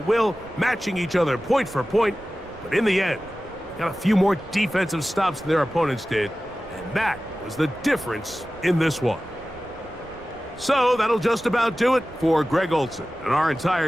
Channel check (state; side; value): noise; right; rumble, 21 dB below the sound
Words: will, matching each other point for point. But in the end, got a few more defensive stops than their opponents did, and that was the difference in this one. So that'll just about do it for Greg Olson and our